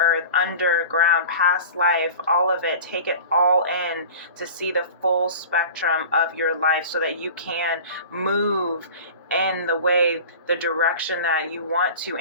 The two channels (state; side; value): inverted; both; correlation -0.38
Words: underground, past life, all of it. Take it all in to see the full spectrum of your life so that you can move in the way, the direction that you want to,